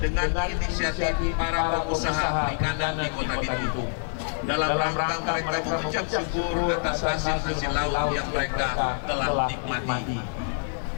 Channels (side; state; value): right; silent; digital silence